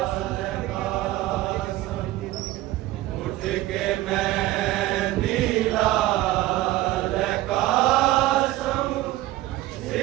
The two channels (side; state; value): left; quieter; 16.2 dB